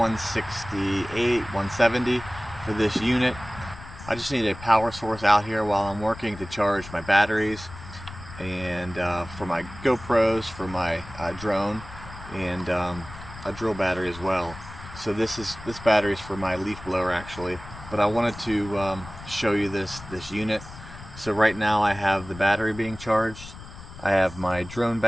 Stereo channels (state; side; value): noise; left; rumble, 15 dB below the sound